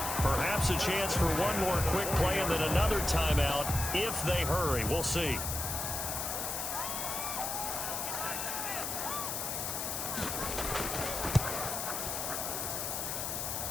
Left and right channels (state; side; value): noise; left; hiss, 3 dB below the sound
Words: Perhaps a chance for one more quick play and then another timeout if they hurry. We'll see.